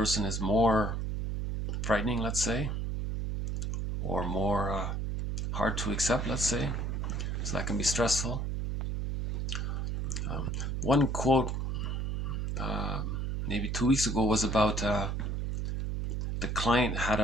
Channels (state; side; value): noise; right; hum, 1 dB below the sound